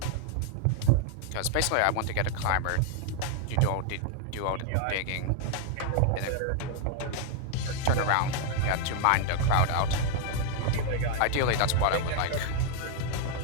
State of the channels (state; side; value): different; both; correlation 0.00